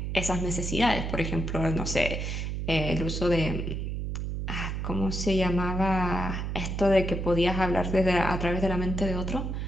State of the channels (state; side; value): noise; right; hum, 3 dB below the sound